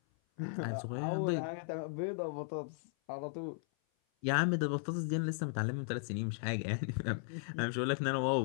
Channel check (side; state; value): right; silent; 54 dB below the other